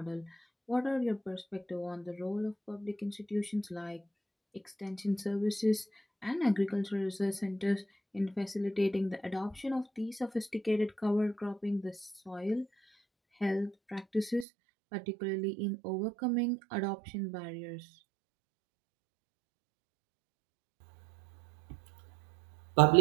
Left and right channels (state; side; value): drops out; left; at 14.5 s